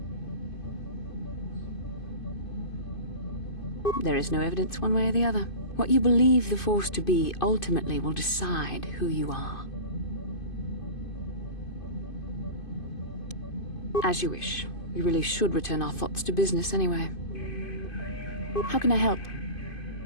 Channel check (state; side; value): late; right; 2.5 ms